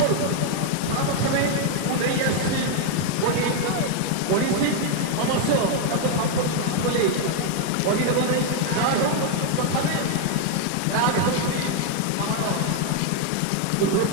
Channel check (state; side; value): different; both; correlation 0.01